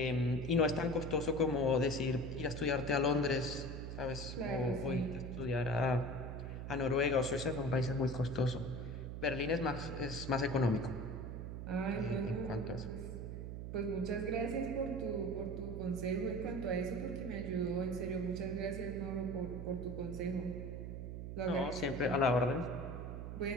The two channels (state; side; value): noise; right; hum, 6 dB below the sound